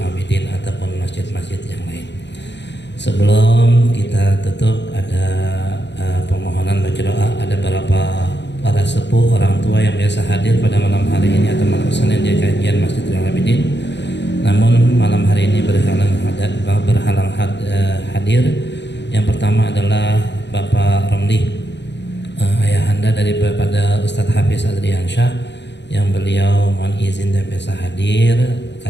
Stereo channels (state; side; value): late; right; 0.51 ms